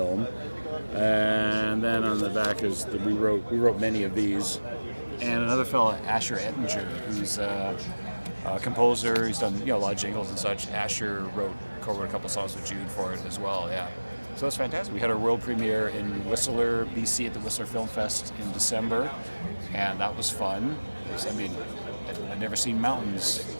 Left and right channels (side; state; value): both; inverted; correlation -1.00